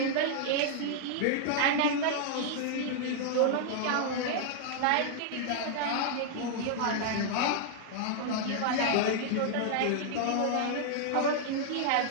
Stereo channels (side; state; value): both; different; correlation -0.01